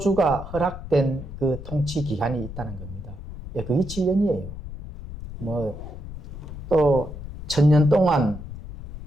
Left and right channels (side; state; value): left; noise; rumble, 11 dB below the sound